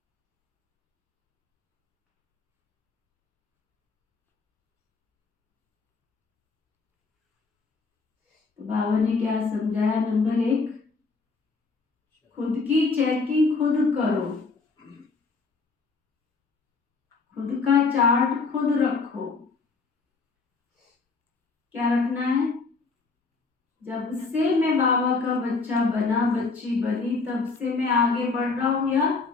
तो बाबा ने क्या समझाया? नंबर 1, खुद की चेकिंग खुद करो, खुद का चार्ट खुद रखो। क्या रखना है? जब से मैं बाबा का बच्चा बना, बच्ची बनी, तब से मैं आगे बढ़ रहा हूं या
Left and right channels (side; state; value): right; quieter; 4.3 dB